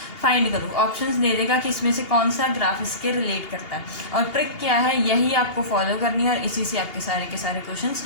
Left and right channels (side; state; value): right; late; 2.8 ms